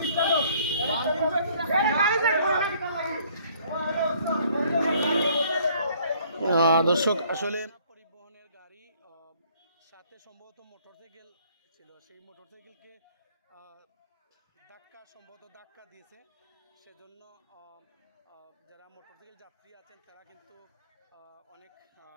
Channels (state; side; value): inverted; both; correlation -0.60